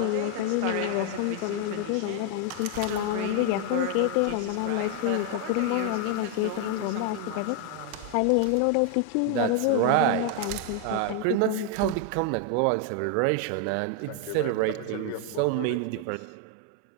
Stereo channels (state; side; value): different; both; correlation 0.00